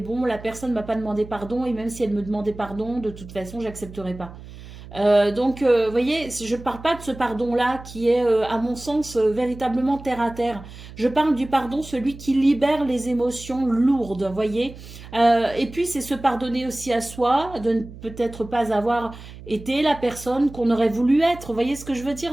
la personne m'a pas demandé pardon, et même si elle me demandait pardon, de toute façon, j'accepterai pas. Donc, vous voyez, je ne parle pas de ce pardon-là qui est, à mon sens, véritablement terre à terre. Je parle du pardon, celui qui libère les émotions lourdes, vous voyez. Et puis, c'est se pardonner aussi à soi, de ne peut-être pas avoir été la personne qu'on aurait voulu être. Vous voyez ce que je veux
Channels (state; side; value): noise; right; hum, 16 dB below the sound